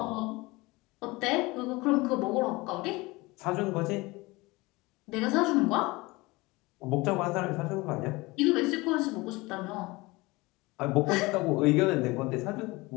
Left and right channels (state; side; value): quieter; right; 22.7 dB